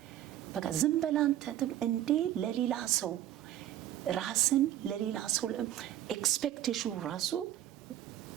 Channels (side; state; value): left; quieter; 12.6 dB